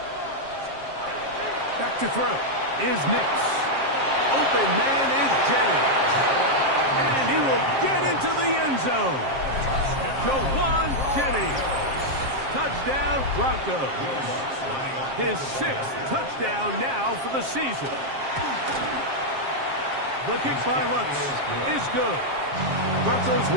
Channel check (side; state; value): left; late; 7.5 ms